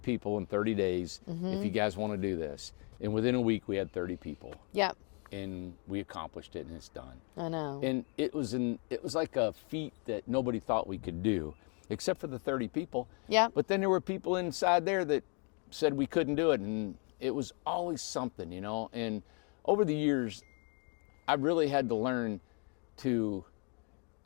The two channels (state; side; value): quieter; right; 37.2 dB